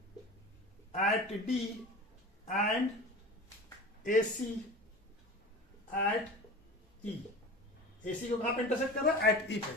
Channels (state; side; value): normal; both; correlation 0.35